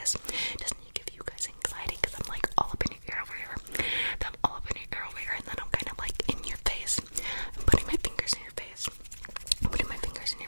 Doesn't it give you guys anxiety? Because I'm like all up in your ear over here. Then I'm all up in your ear over here, and then I'm kind of like in your face. I'm putting my fingers in your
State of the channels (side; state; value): both; inverted; correlation -1.00